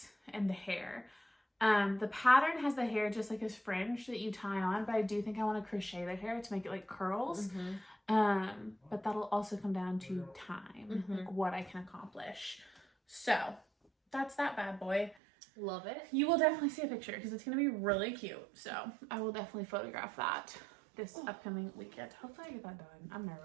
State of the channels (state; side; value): drops out; left; at 15.2 s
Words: and the hair. The pattern has the hair just like a fringe that you tie on, but I do think I want to crochet the hair to make it like curls. But that'll also come down to time, like what I can accomplish. So that's that bad boy. Love it. You will definitely see a picture because it's going to be really cute. So I will definitely photograph that this upcoming weekend. Hopefully I get that done. I'm